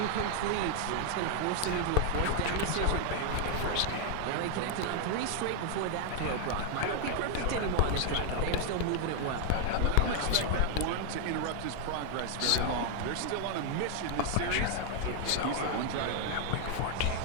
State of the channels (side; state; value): both; different; correlation 0.00